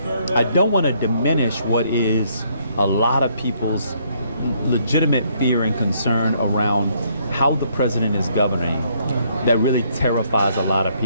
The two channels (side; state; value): both; inverted; correlation -0.69